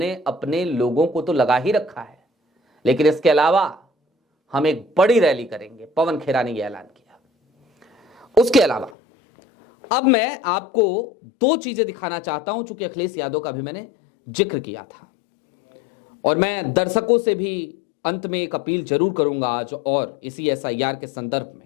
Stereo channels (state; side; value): drops out; right; at 9.0 s